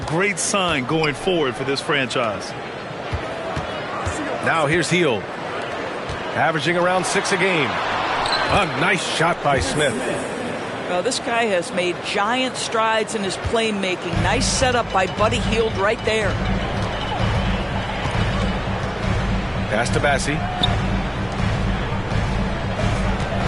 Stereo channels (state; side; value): identical; both; correlation 1.00